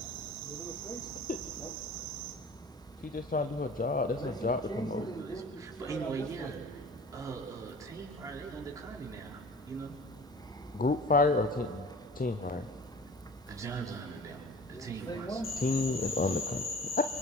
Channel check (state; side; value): normal; both; correlation 0.43